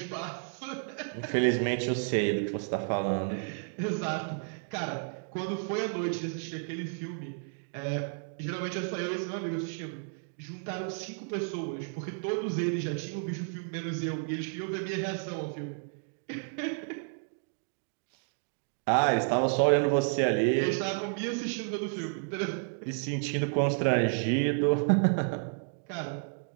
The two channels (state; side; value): silent; left; 57 dB below the other